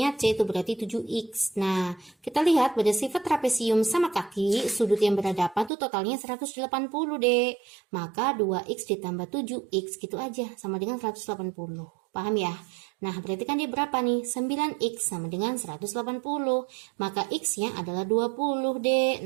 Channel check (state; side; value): drops out; left; at 5.7 s